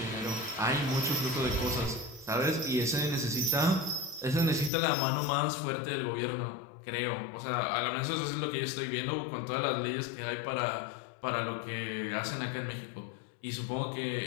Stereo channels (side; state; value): right; drops out; at 4.7 s